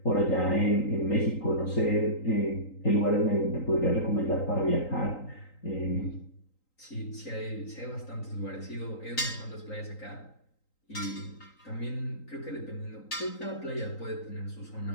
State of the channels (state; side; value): late; right; 3.9 ms